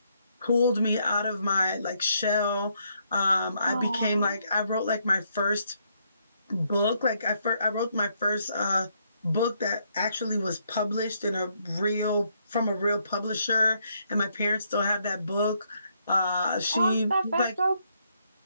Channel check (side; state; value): both; inverted; correlation -0.74